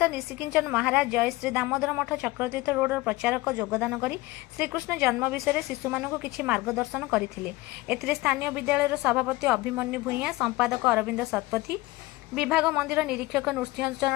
निशिकिंचन महाराज जय श्री दामोदर मठ चक्रतीर्थ रोड प्रचारक योगदान करी श्रीकृष्ण जन्म विषय शिशु मानक किछि मार्गदर्शन करथिले। एथिरे स्थानीय विद्यालयर सभापति अभिमन्यु भूइया, संपादक अरविंद शतपथी, विभाग मंदिर निरीक्षक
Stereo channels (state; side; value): quieter; right; 20.2 dB